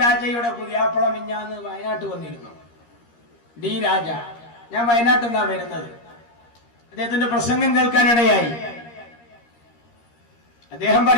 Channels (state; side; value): late; right; 13 ms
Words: രാജയുടെ പുതിയാപ്പള മിഞ്ഞാന്ന് വയനാട്ട് വന്നിരുന്നു. ഡി രാജ. ഞാൻ വയനാട്ടിൽ നിന്നാ വരുന്നത്. അദ്ദേഹത്തിന്റെ പ്രസംഗം കേൾക്കാനിടയായി. അദ്ദേഹം